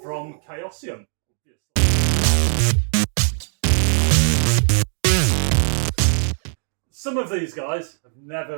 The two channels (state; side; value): silent; left; 59 dB below the other